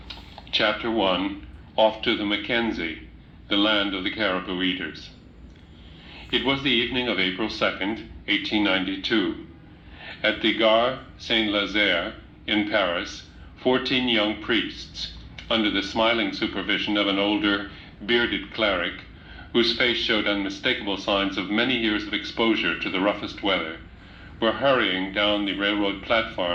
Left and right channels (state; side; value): identical; both; correlation 1.00